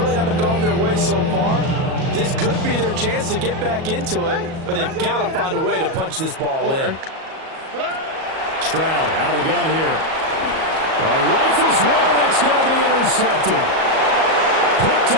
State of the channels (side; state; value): left; late; 37 ms